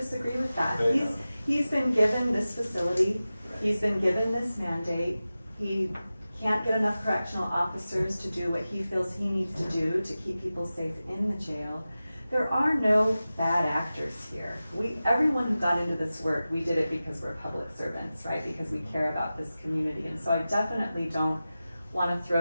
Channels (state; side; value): inverted; both; correlation -0.95